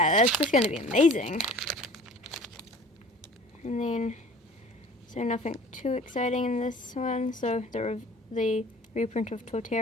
that's just going to be amazing. And then, so nothing too exciting in this one. So the reprint of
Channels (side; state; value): both; normal; correlation 0.46